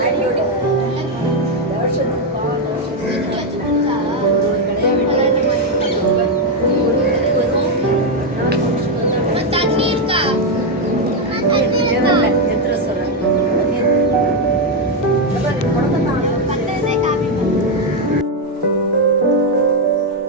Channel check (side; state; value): both; normal; correlation 0.04